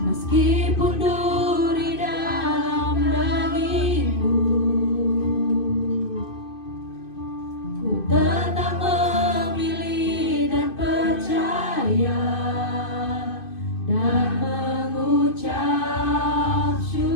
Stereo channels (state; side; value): late; right; 2.5 ms